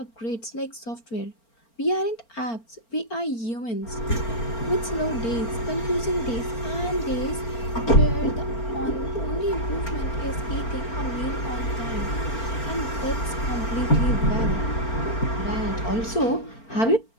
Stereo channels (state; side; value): late; right; 4.4 ms